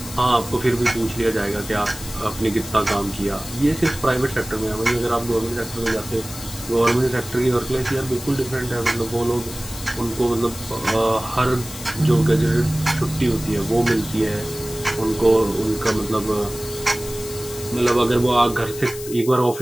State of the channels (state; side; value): noise; left; hiss, 12 dB below the sound